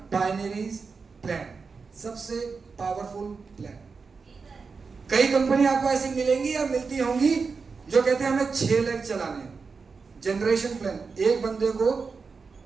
binary plan, सबसे पावरफुल प्लान। कई कंपनी आपको ऐसी मिलेंगी या मिलती होंगी जो कहते हैं हमें 6 लाख चलाने हैं, जनरेशन प्लान, एक बंदे को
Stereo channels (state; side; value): quieter; left; 4.9 dB